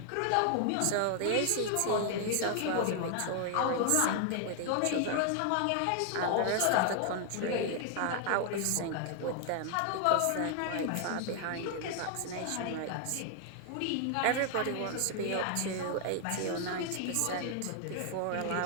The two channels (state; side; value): different; both; correlation 0.00